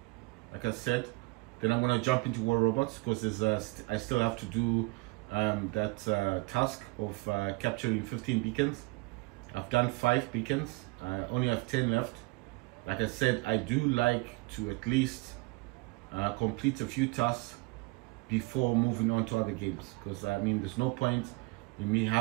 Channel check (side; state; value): left; quieter; 24.8 dB